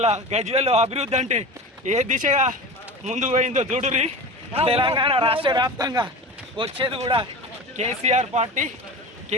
గజ్వేల్లో అభివృద్ధి అంటే ఏ దిశగా ముందుకు పోయిందో చూడురి. తెలంగాణ రాష్ట్ర వ్యాప్తంగా వచ్చేది కూడా కేసీఆర్ పార్టీ.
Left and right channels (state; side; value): normal; both; correlation 0.31